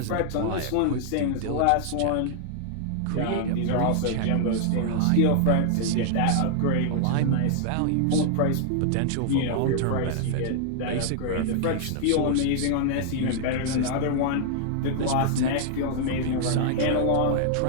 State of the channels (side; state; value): both; different; correlation -0.01